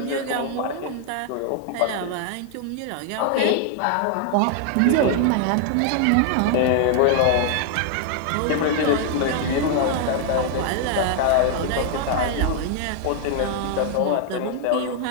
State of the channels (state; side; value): different; both; correlation 0.00